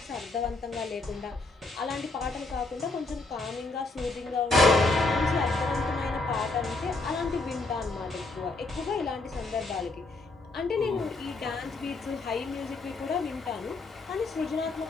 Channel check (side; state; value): right; quieter; 3.3 dB